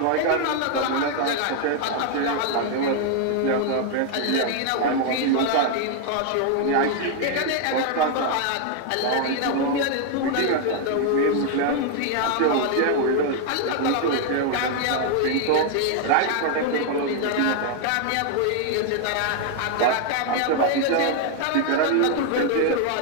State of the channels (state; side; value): different; both; correlation 0.00